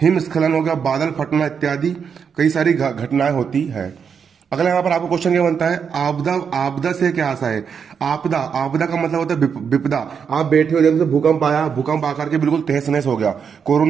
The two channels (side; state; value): left; quieter; 6.7 dB